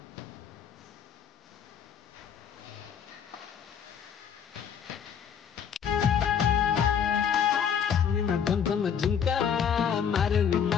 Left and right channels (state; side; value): quieter; right; 7.8 dB